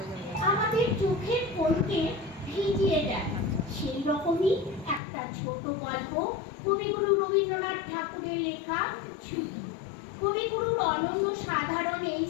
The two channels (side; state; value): right; drops out; at 5.0 s